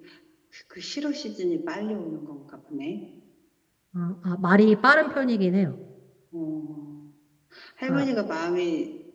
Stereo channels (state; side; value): identical; both; correlation 1.00